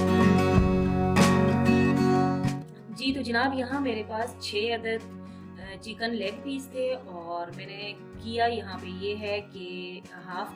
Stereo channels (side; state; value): both; identical; correlation 1.00